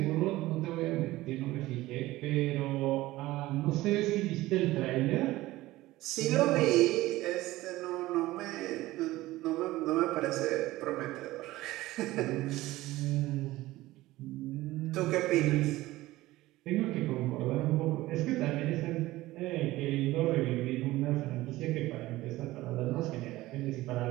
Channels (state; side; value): quieter; left; 17.6 dB